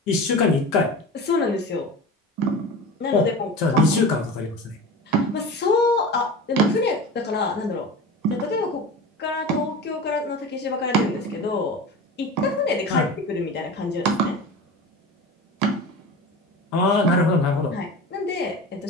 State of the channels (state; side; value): normal; both; correlation 0.31